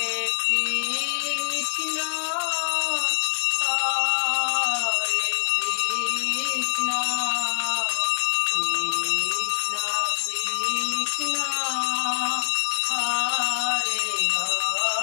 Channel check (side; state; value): right; silent; digital silence